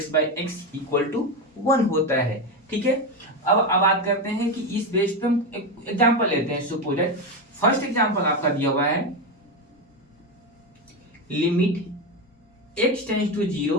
by X equal to 1 होता है। ठीक है, अब बात करते हैं कि इस बेस पे हम एक एग्जांपल लेते हैं। सपोज फर्स्ट एग्जांपल आपका दिया हुआ है limit x tends to 0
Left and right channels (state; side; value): normal; both; correlation 0.14